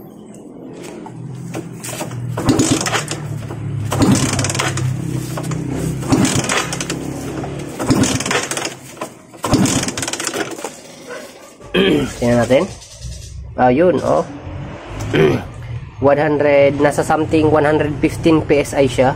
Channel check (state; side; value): identical; both; correlation 1.00